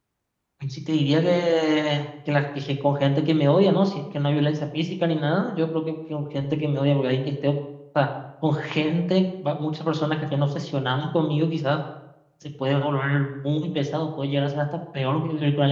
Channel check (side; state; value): both; identical; correlation 1.00